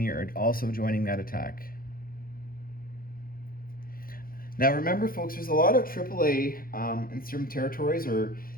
are also joining that attack. Now remember, folks, there's a lot of AAA in certain territories, or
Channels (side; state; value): right; late; 0.42 ms